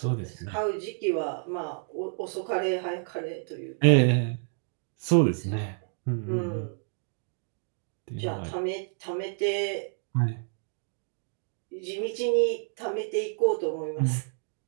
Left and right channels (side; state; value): left; silent; digital silence